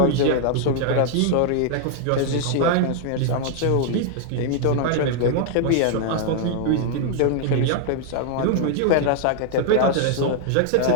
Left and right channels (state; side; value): different; both; correlation 0.00